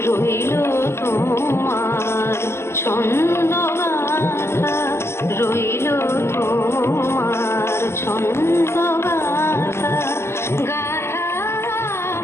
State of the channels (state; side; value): late; right; 0.12 ms